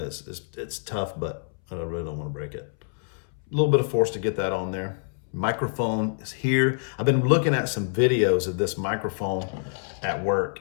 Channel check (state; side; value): silent; right; 61 dB below the other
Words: tough, but I really don't want to break it. A little bit of force to get that on there. Microphone is here. I've been looking at some videos of this microphone at work,